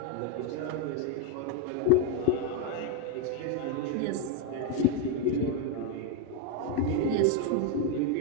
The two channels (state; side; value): different; both; correlation 0.02